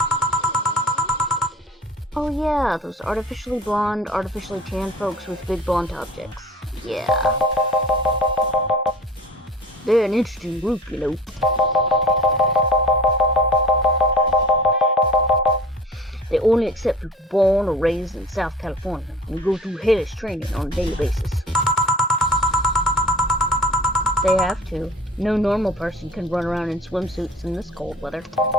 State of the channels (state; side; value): normal; both; correlation 0.42